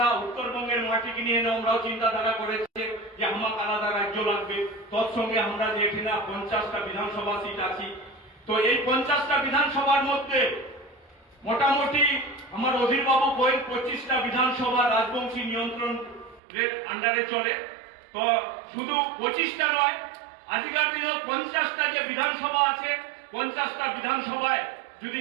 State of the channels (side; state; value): left; drops out; at 16.4 s